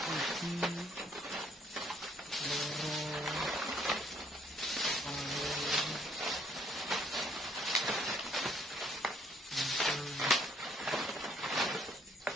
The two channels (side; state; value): both; normal; correlation 0.65